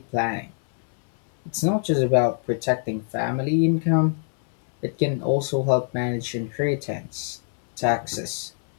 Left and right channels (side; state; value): right; silent; 63 dB below the other